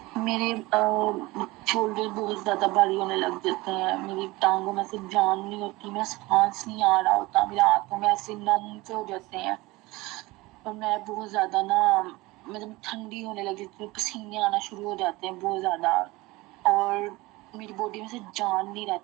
मेरे शोल्डर बहुत ज्यादा भारी होने लग जाते हैं, मेरी टांगों में से जान नहीं होती, मेरा सांस नहीं आ रहा होता, मेरे हाथों में ऐसे नम से हो जाते हैं, और मैं बहुत ज्यादा ना मतलब ठंडी होने लग जाती है, पसीने आना शुरू हो जाते हैं बहुत ज्यादा, और मेरी बॉडी में से जान नहीं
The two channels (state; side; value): quieter; left; 21.3 dB